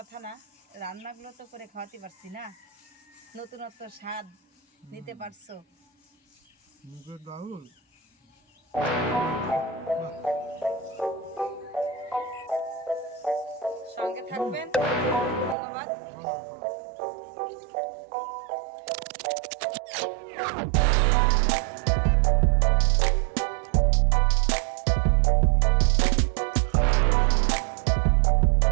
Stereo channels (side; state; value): left; drops out; at 15.6 s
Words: না, রান্নাগুলো তো করে খাওয়াতে পারছি না, নতুনত্ব স্বাদ নিতে পারছো। মুগের ডাউল, সঙ্গে থাকবেন, ধন্যবাদ।